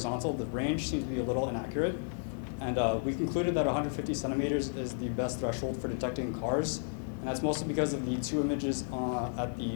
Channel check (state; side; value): silent; right; digital silence